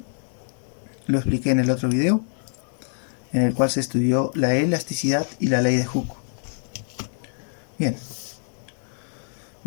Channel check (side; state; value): right; silent; digital silence